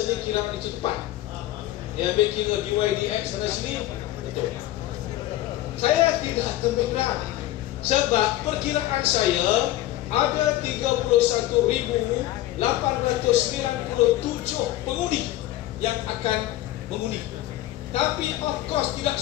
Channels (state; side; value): quieter; right; 15.1 dB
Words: kiraan itu tepat. Dia ambil kira dydx sana sini, betul. Saya tidak terberat, sebab perkiraan saya ada 31.897 pengundi yang akan mengundi. Tapi of course tidak